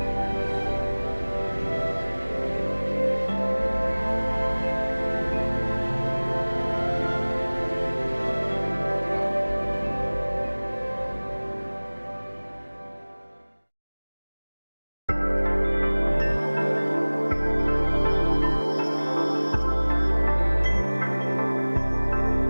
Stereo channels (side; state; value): both; inverted; correlation -1.00